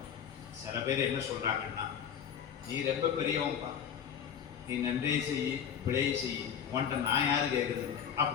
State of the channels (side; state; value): right; quieter; 8.2 dB